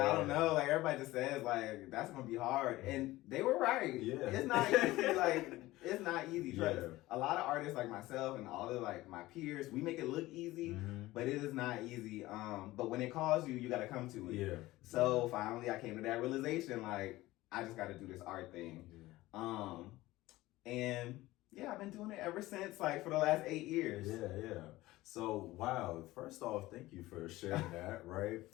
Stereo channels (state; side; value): quieter; right; 17.9 dB